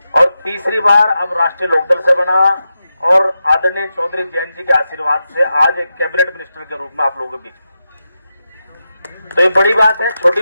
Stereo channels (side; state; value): both; inverted; correlation -0.89